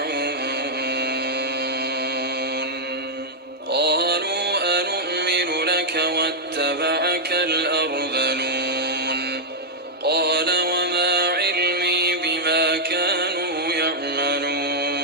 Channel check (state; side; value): normal; both; correlation -0.03